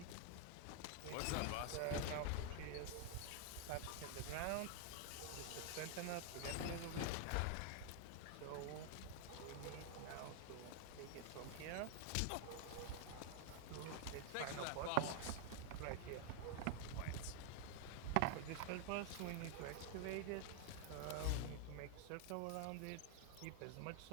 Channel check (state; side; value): different; both; correlation 0.00